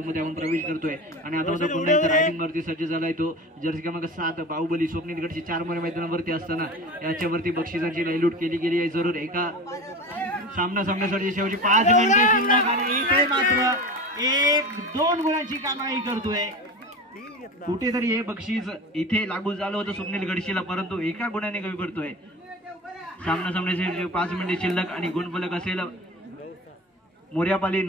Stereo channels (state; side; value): normal; both; correlation 0.31